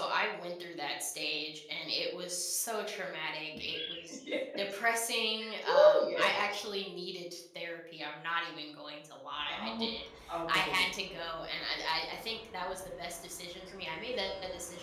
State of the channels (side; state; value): both; identical; correlation 1.00